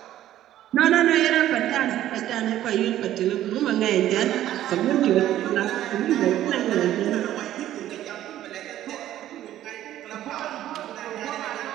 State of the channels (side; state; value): left; quieter; 12.8 dB